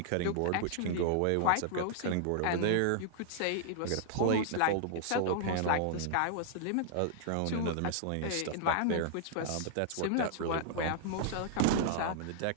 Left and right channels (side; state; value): both; different; correlation -0.01